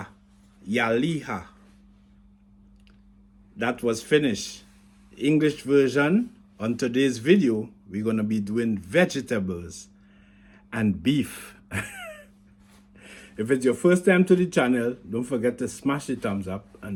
ja liha. That was finished. English version, on today's video, we're going to be doing vegetables and beef. If it's your first time to the channel, don't forget to smash the thumbs up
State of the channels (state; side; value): identical; both; correlation 1.00